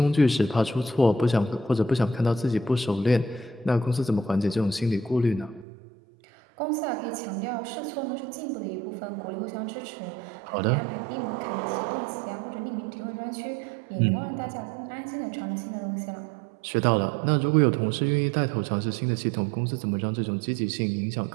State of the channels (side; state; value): left; drops out; at 5.7 s